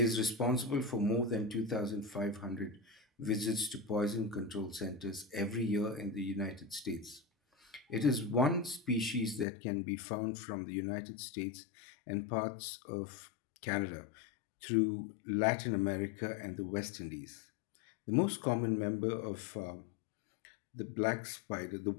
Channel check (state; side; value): drops out; right; at 9.5 s